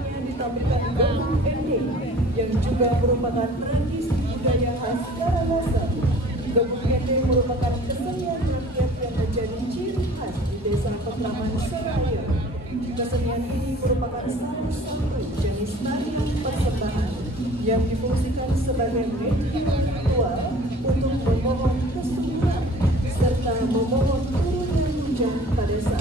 ditampilkan Gabung Ending yang juga merupakan tradisi budaya khas Karangasem. Gabung Ending merupakan kesenian rakyat yang menjadi ciri khas di Desa Petraman Seraya. Kesenian ini merupakan salah satu jenis tarian persembahan yang difungsikan sebagai media ritual untuk memohon kesuburan serta memohon turunnya hujan pada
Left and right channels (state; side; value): normal; both; correlation 0.47